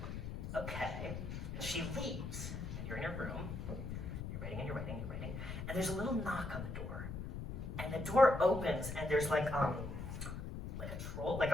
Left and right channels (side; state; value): left; noise; rumble, 6 dB below the sound